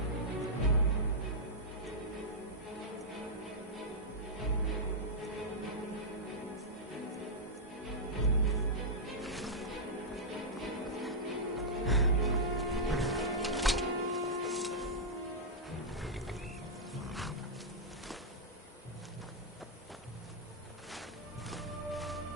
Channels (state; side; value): normal; both; correlation -0.08